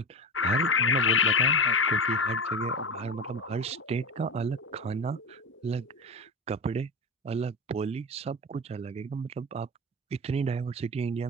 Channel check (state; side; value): normal; both; correlation 0.23